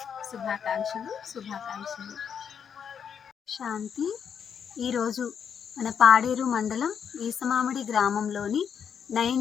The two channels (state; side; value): quieter; right; 7.6 dB